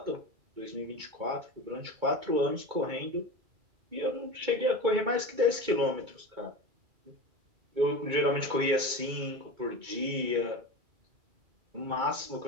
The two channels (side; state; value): left; late; 2.2 ms